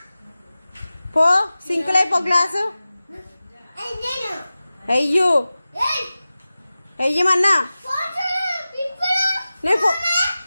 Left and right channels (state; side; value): inverted; both; correlation -0.96